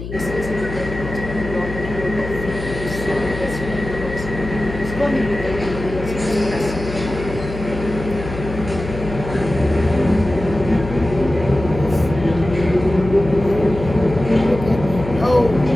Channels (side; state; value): left; noise; hum, 9 dB below the sound